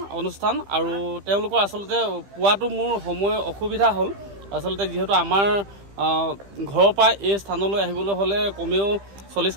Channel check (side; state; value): left; late; 15 ms